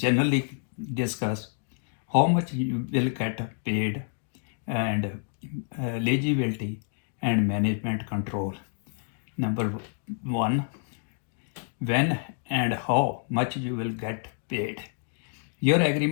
discuss how much you will get paid and eligibility and management control. Number one, when and how much you will get paid. Your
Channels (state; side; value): silent; right; 59 dB below the other